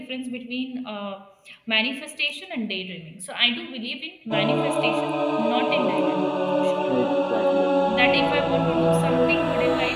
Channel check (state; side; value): identical; both; correlation 1.00